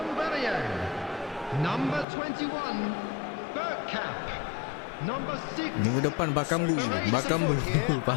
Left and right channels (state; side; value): drops out; right; at 2.1 s